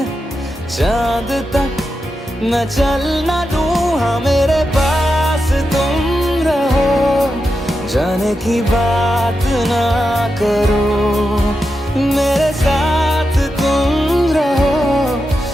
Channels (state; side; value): normal; both; correlation 0.88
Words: चांद तक मैं चल ना लूं। हाँ मेरे पास तुम रहो, जाने की बात ना करो, मेरे साथ तुम रहो,